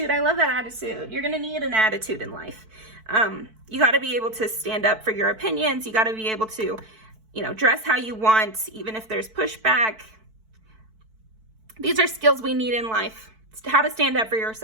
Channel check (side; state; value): left; late; 4.6 ms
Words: I love that attitude. You're going to need an attitude in life. You got to be able to stand up for your opinions. You got to be able to, you know, dress how you want, even if there's pushback. These are skills we need in life. It's how to stand up for